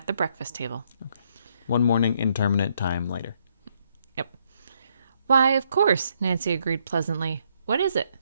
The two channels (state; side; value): inverted; both; correlation -0.73